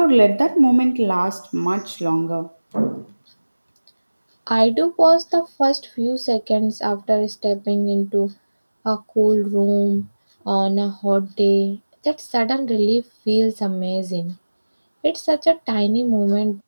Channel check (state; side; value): inverted; both; correlation -1.00